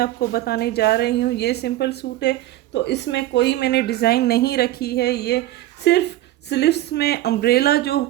बताने जा रही हूँ। ये सिंपल सूट है तो इसमें कोई मैंने डिज़ाइन नहीं रखी है। ये सिर्फ स्लीव्स में अम्ब्रेला जो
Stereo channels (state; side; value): quieter; left; 15.0 dB